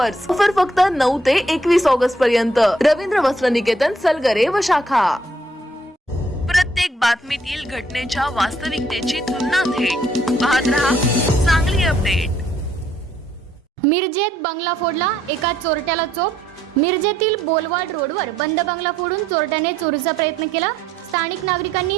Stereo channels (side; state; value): both; normal; correlation 0.69